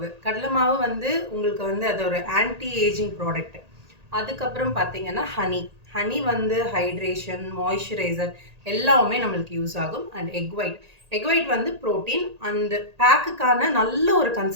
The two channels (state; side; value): late; left; 1.8 ms